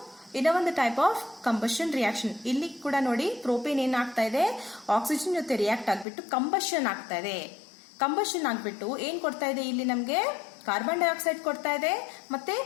ಇನ್ನ ಒಂದು type of combustion reaction. ಇಲ್ಲಿ ಕೂಡ ನೋಡಿ, propane ಏನಾಗ್ತಾ ಇದೆ? ಆಕ್ಸಿಜನ್ ಜೊತೆ ರಿಯಾಕ್ಟ್ ಆಗ್ಬಿಟ್ಟು ಕಂಬಷನ್ ಆಗ್ತಾ ಇದೆ. ಕಂಬಷನ್ ಆಗ್ಬಿಟ್ಟು ಏನ್ ಕೊಡ್ತಾ ಇದೆ? ಇಲ್ಲಿ ನಮ್ಗೆ ಕಾರ್ಬನ್ ಡೈಆಕ್ಸೈಡ್ ಕೊಡ್ತಾ ಇದೆ, ಮತ್ತೆ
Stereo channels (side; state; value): right; drops out; at 6.1 s